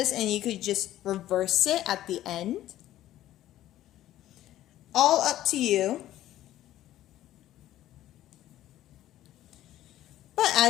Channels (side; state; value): right; quieter; 13.6 dB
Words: and you could just reverse it at the end. All up to you. But